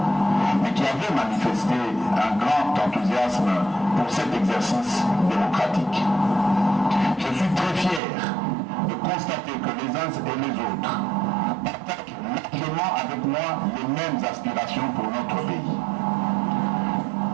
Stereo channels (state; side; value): drops out; left; at 8.0 s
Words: mais qui avait manifesté un grand enthousiasme pour cet exercice démocratique. Je suis très fier de constater que les uns et les autres partagent largement avec moi les mêmes aspirations pour notre pays.